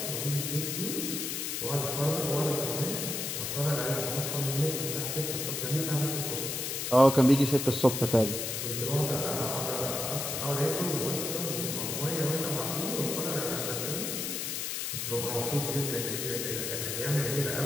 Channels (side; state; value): left; noise; hiss, 2 dB below the sound